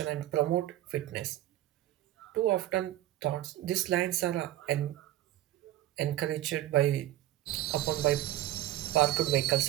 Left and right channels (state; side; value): quieter; left; 14.2 dB